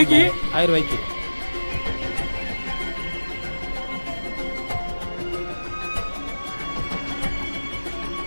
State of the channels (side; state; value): both; inverted; correlation -1.00